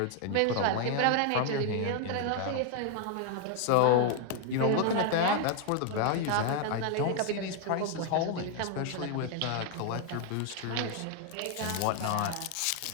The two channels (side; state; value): both; different; correlation 0.00